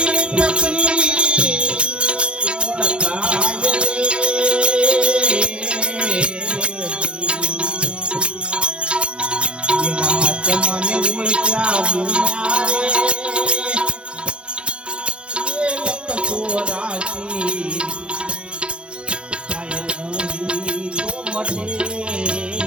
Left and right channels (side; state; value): left; late; 0.057 ms